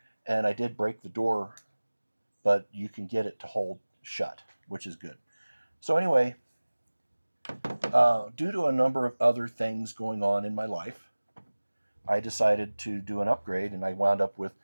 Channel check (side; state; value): both; inverted; correlation -1.00